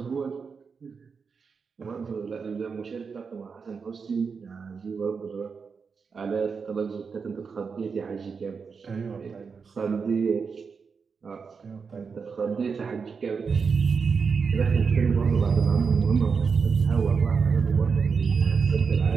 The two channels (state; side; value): quieter; left; 5.5 dB